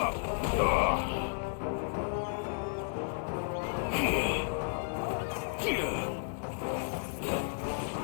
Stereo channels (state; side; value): silent; right; digital silence